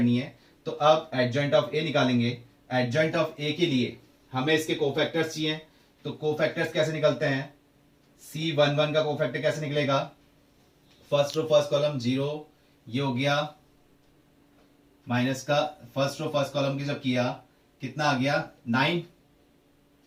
है। तो अब एडजॉइंट ऑफ a निकालेंगे। एडजॉइंट ऑफ a के लिए हमें इसके कोफैक्टर्स चाहिए। तो कोफैक्टर्स कैसे निकलते हैं, C11 का कोफैक्टर कैसे निकलेगा, फर्स्ट रो फर्स्ट कॉलम 0, ये हो गया माइनस का फर्स्ट रो फर्स्ट कॉलम की जब किया कितना आ गया 9,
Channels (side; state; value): both; identical; correlation 1.00